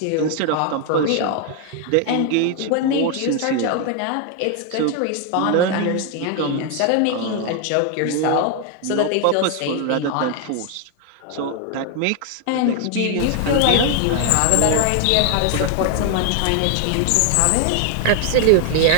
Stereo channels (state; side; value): different; both; correlation 0.00